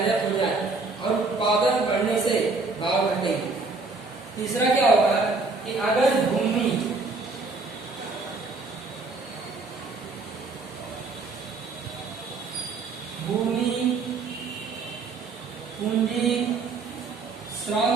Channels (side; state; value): left; quieter; 3.8 dB